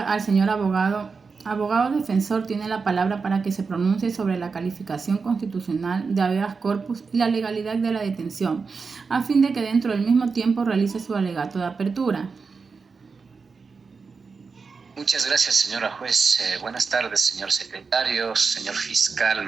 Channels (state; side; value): quieter; left; 4.9 dB